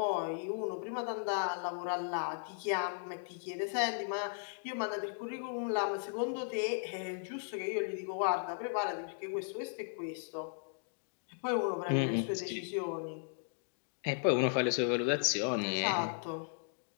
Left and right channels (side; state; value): right; silent; digital silence